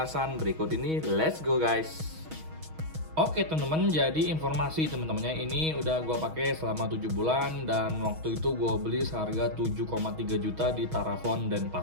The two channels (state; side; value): late; left; 6.3 ms